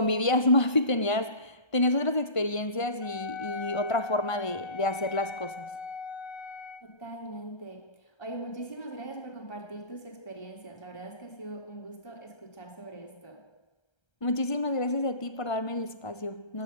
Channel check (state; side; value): late; right; 1.3 ms